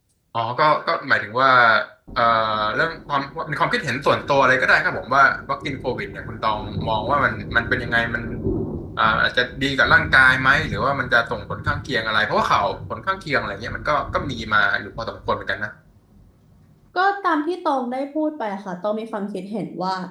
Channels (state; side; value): identical; both; correlation 1.00